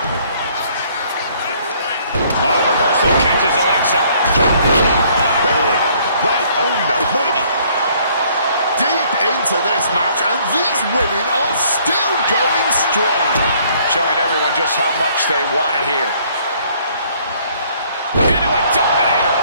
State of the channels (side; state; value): both; inverted; correlation -0.62